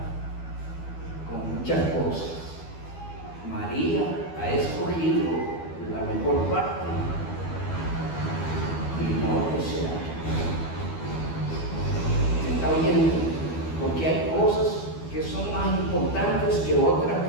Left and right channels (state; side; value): late; right; 12 ms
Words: con muchas cosas, María ha escogido la mejor parte y no desea. ¿Se está oyendo? Porque hay cosas que son más importantes que otras